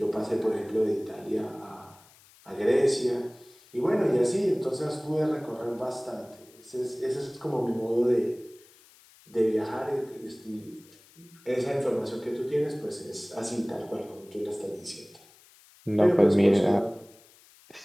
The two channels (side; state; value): left; noise; hiss, 26 dB below the sound